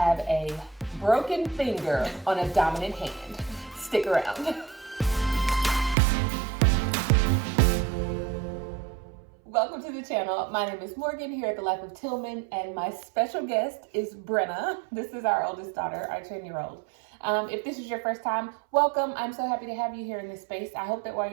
a broken finger on a dominant hand. Stick around. Welcome to the channel. My name is Morgan here at The Life of Tillman, and my special guest is Brenna. This is our oldest daughter, our 10-year-old. If this is your first time, welcome. I'm so happy to have you here in this space. I hope that while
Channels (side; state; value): left; drops out; at 6.0 s